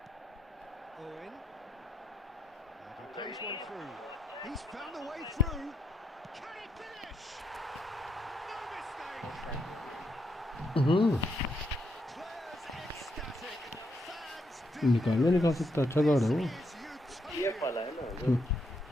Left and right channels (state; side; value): normal; both; correlation 0.78